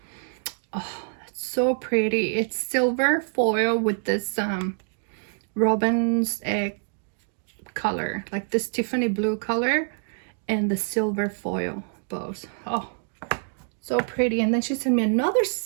Oh, that's so pretty. It's silver foil with this robin's egg color, like this Tiffany blue color, and the silver foil bows. Oh, So pretty. And then she sent me another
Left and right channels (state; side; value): silent; left; 61 dB below the other